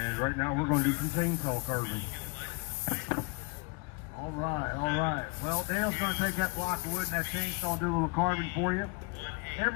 right now we're going to do some chainsaw carving. All right. Well, Dale's going to take that block of wood and that chainsaw and do a little carving for you.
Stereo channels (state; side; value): quieter; right; 31.0 dB